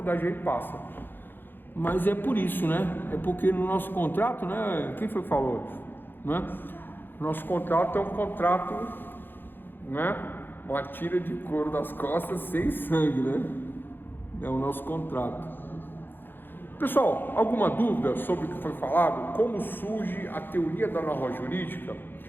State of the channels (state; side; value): late; right; 0.097 ms